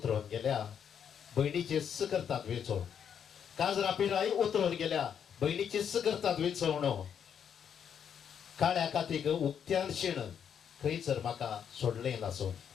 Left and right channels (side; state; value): right; quieter; 8.1 dB